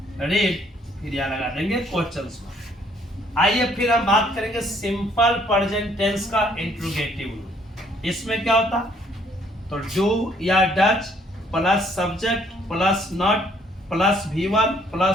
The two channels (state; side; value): normal; both; correlation 0.64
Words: फिर यहाँ लगा देंगे क्वेश्चन मार्क्स। आइए फिर हम बात करेंगे सिंपल प्रेजेंट टेंस का इंट्रोगेटिव रूल। इसमें क्या होता, तो डू या Dutch plus subject plus not plus V1